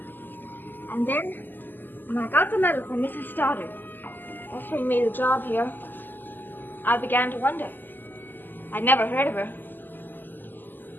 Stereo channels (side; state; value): right; late; 0.089 ms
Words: And then, when I got the letter from Mrs. Stoddard, offering me the job here, I began to wonder. I'd never heard of her.